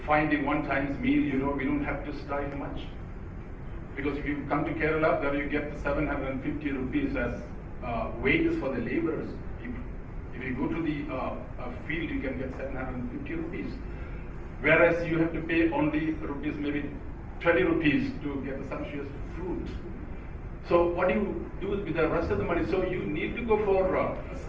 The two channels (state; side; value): identical; both; correlation 1.00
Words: finding one time's meal, we don't have to strive much. Because if you come to Kerala, there you get 750 rupees as wages for the laborers. If you go to the field, you can get 750 rupees. Whereas you have to pay only rupees, maybe 20 rupees to get the sumptuous fruit. So what do you do with the rest of the money? So you need to go for